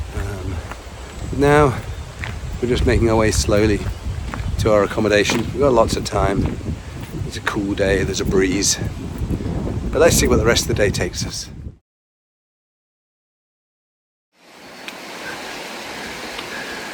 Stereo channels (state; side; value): identical; both; correlation 1.00